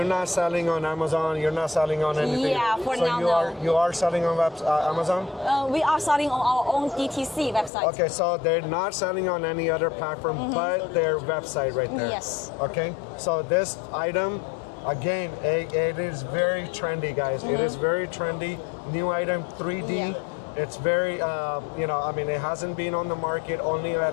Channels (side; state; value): right; drops out; at 7.7 s